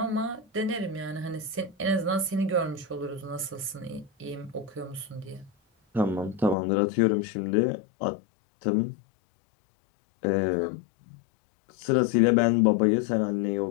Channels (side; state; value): right; drops out; at 6.6 s